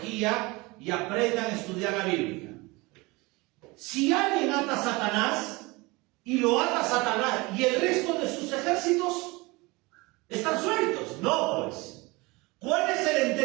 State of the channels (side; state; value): left; quieter; 24.1 dB